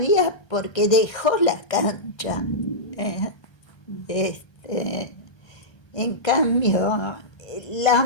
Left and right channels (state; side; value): late; right; 1.3 ms